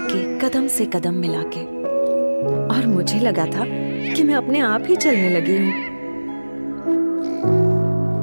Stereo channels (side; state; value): both; inverted; correlation -1.00